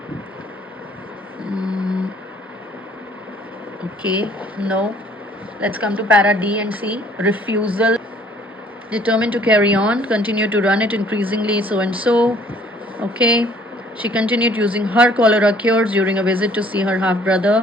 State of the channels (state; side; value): normal; both; correlation 0.58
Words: Okay, no. Let's come to para D and C. Refusal. Determined to carry on, continue to run it increasingly, so and so. Okay. She continued using her cholera cures during a visit to see her half